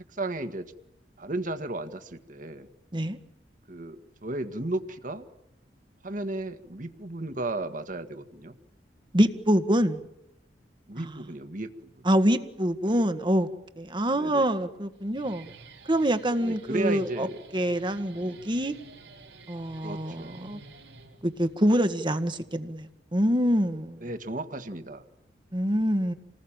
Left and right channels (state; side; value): normal; both; correlation 0.76